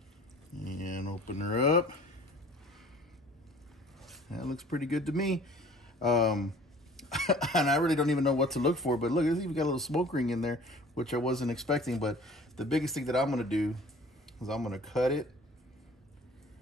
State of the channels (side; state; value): both; normal; correlation 0.49